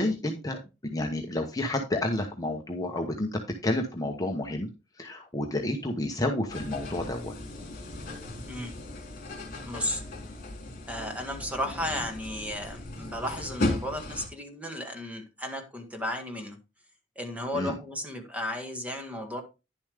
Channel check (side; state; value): both; normal; correlation 0.52